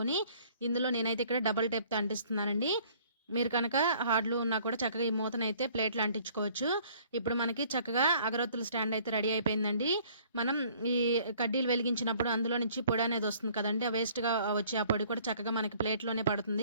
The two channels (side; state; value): both; inverted; correlation -0.57